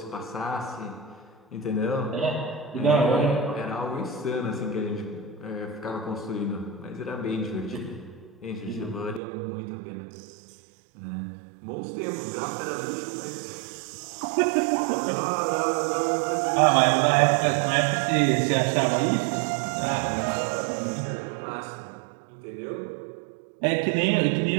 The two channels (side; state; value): left; drops out; at 9.2 s